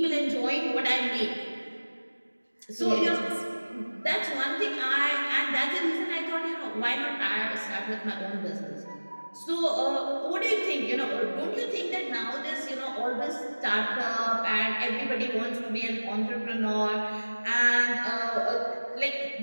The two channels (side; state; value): both; inverted; correlation -1.00